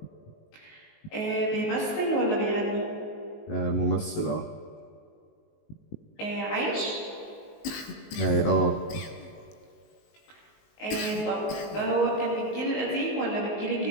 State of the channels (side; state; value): right; late; 19 ms